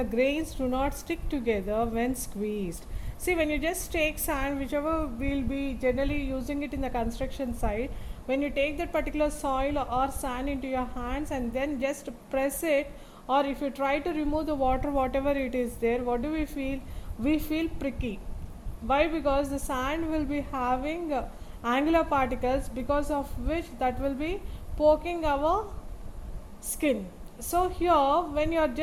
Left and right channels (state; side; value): identical; both; correlation 1.00